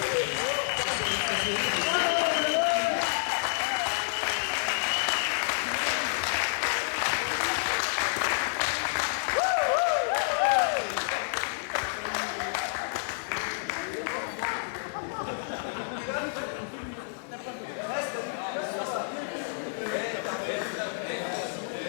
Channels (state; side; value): silent; right; digital silence